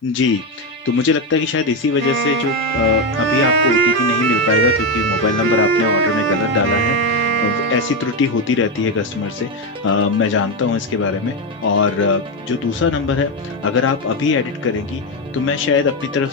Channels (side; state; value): both; normal; correlation 0.10